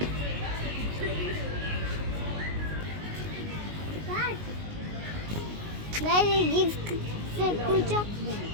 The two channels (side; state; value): left; late; 19 ms